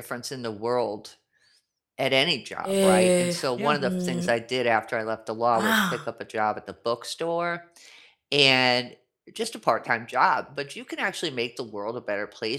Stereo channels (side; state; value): both; identical; correlation 1.00